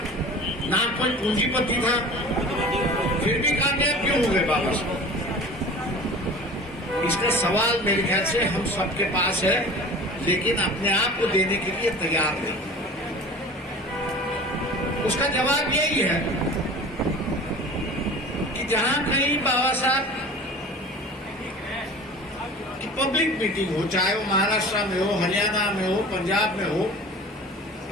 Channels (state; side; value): normal; both; correlation 0.40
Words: ना कोई पूंजीपति था, फिर भी कामयाब क्यों हो गए बाबा साहब? इसका सवाल मेरे ख्याल से हम सबके पास है, लेकिन अपने आप को देने के लिए तैयार नहीं। उसका जवाब यही है कि जहां कहीं बाबा साहब की पब्लिक मीटिंग हो, चाहे वो महाराष्ट्र में हो, हरियाणा में हो, पंजाब में हो,